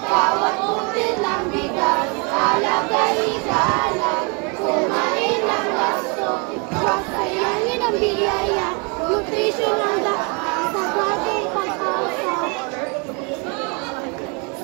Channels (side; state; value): left; quieter; 33.1 dB